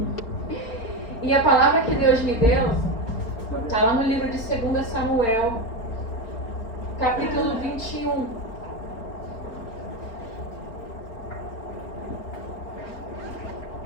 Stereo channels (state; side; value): late; right; 4.4 ms